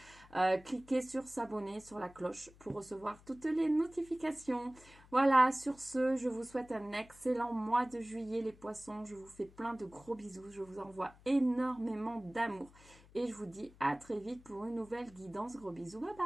Cliquez sur s'abonner, sur la cloche pour recevoir toutes les notifications. Voilà, sur ce, je vous souhaite un excellent mois de juillet, les poissons. Je vous fais plein de gros bisous, je vous envoie énormément d'amour. Et je vous dis à très vite pour une nouvelle guidance. Gros bisous, bye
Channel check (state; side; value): noise; left; hum, 24 dB below the sound